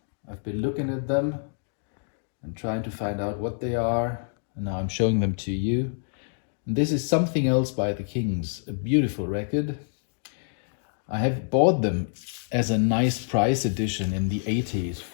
I've been looking at them and trying to find out what they are, and now I'm showing them to you. And this is Something Else by the Kings, a beautiful record. I have bought them as a nice price edition in the 80s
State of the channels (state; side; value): silent; right; digital silence